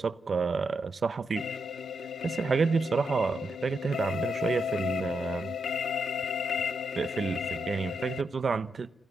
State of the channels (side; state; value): both; normal; correlation 0.82